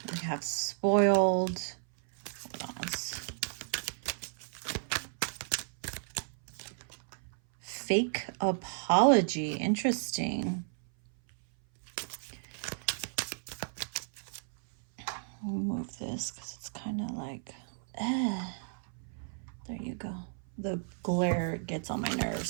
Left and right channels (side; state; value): left; silent; 55 dB below the other